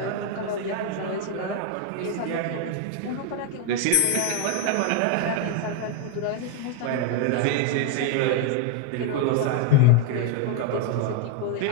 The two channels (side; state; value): both; different; correlation 0.00